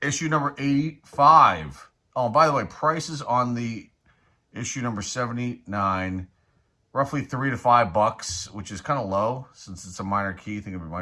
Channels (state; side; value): identical; both; correlation 1.00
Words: issue number 85. Oh, by the way, prices on the issue number 79, roughly $3 to $5, which is kind of low since it's a minor key. I think it